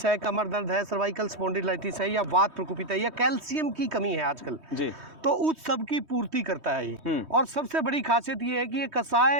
है, कमर दर्द है, सर्वाइकल स्पॉन्डिलाइटिस है, या वात प्रकोपित है, या कैल्शियम की कमी है आजकल जी, तो उस सब की पूर्ति करता है ये। और सबसे बड़ी खासियत ये है कि ये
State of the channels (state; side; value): late; left; 3.2 ms